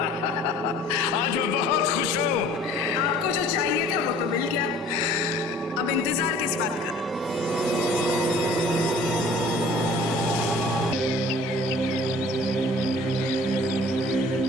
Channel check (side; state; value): both; normal; correlation 0.50